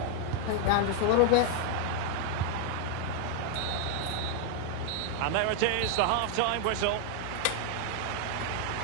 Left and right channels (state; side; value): different; both; correlation 0.00